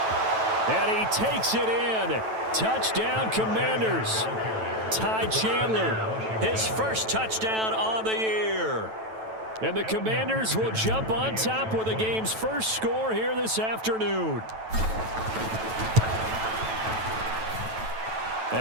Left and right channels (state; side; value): late; left; 9.1 ms